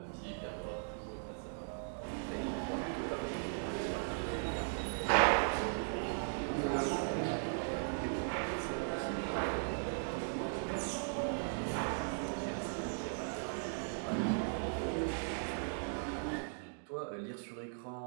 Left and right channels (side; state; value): left; silent; digital silence